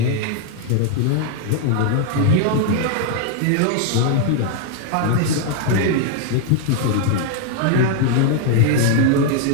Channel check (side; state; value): both; different; correlation 0.00